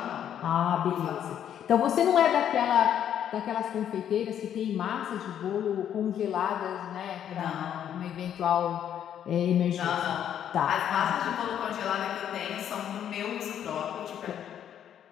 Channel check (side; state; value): right; quieter; 9.7 dB